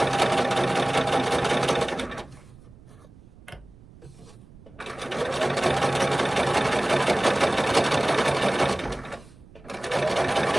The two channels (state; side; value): noise; right; rumble, 23 dB below the sound